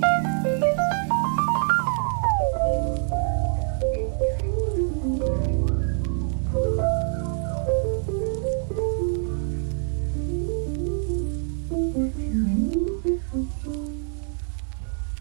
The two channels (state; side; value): silent; left; 62 dB below the other